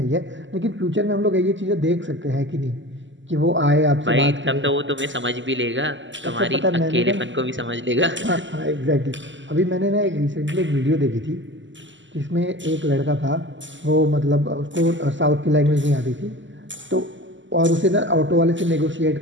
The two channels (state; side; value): late; left; 0.54 ms